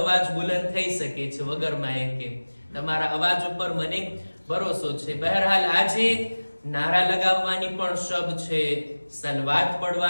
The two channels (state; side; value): inverted; both; correlation -1.00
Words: અવાજ બુલંદ થઈ શકે છે વગર માઇકે. તમારા અવાજ ઉપર મને ભરોસો છે. બહરહાલ આજે નારા લગાવવાની પણ શબ છે, સલવાત